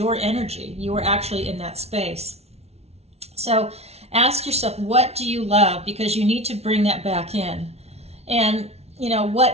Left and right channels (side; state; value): left; late; 0.31 ms